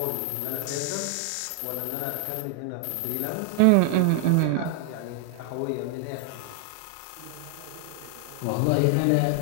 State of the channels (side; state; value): both; different; correlation 0.00